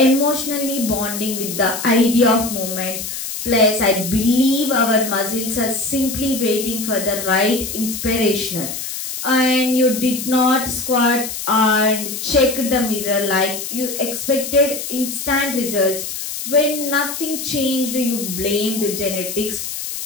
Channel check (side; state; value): left; noise; hiss, 6 dB below the sound